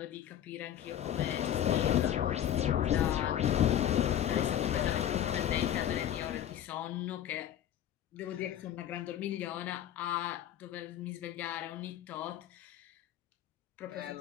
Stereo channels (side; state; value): right; quieter; 11.0 dB